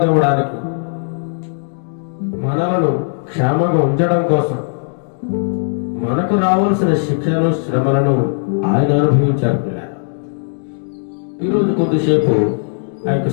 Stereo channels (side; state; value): right; silent; digital silence